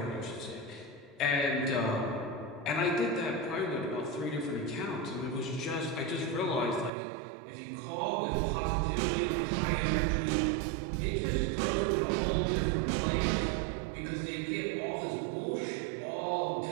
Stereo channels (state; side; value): drops out; left; at 6.9 s